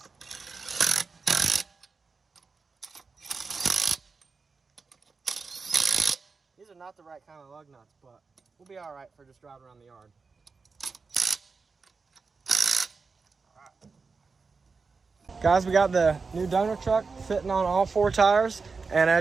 These are not the right kind of lug nuts, but we'll be all right for just driving around the yard. Guys, we got the new donor truck fitting on all 4 tires, and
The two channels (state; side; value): quieter; left; 4.6 dB